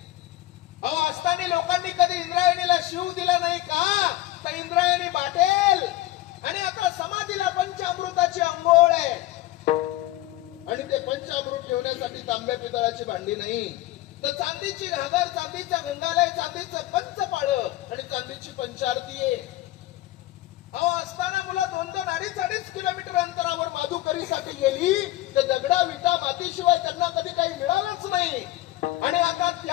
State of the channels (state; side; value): quieter; right; 16.5 dB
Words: अहो असताना लोकांनी कधी इंद्रायणीला शिव दिला नाही का तर इंद्रायणी बाटेल आणि आता समाधीला पंचामृताची अंघोळ आहे आणि ते पंचामृत ठेवण्यासाठी तांब्या पितळाची भांडी नाही तर चांदीची घागर चांदीचा गंगालय चांदीचं पंचपाळ आणि चांदीची पंचारती आहे. अहो असताना मुलं 2-2, 2.5 किलोमीटर अंतरावर माधुकरीसाठी गेली तर दगडा विटा मातीशिवाय त्यांना कधी काही मिळालंच नाही आणि आता